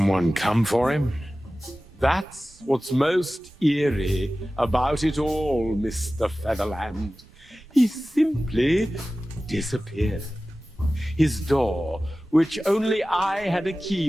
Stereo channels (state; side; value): normal; both; correlation 0.96